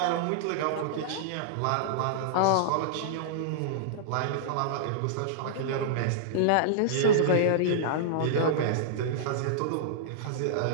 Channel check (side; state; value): both; different; correlation -0.02